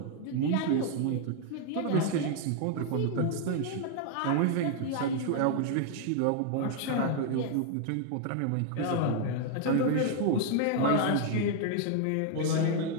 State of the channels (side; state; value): both; different; correlation 0.00